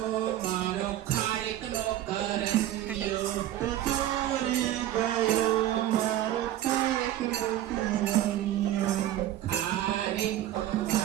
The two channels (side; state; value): left; quieter; 13.0 dB